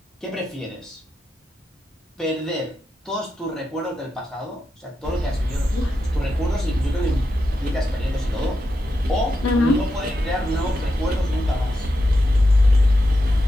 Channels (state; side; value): normal; both; correlation 0.87